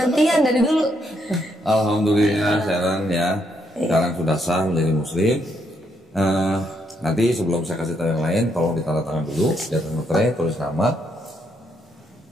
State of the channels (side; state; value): both; normal; correlation 0.76